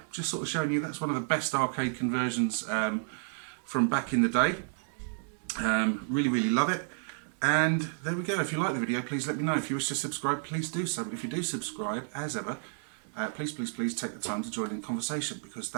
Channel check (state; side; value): silent; left; digital silence